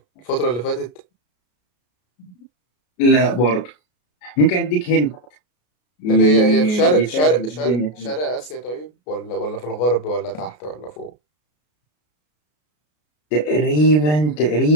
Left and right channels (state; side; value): late; right; 33 ms